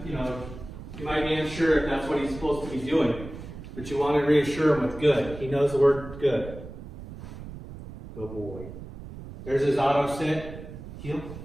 know, you might be unsure if that's what he's supposed to be doing, but you want to reassure him with good. He knows the word good. Good boy. There's his auto sit, heel,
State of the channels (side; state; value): right; noise; rumble, 13 dB below the sound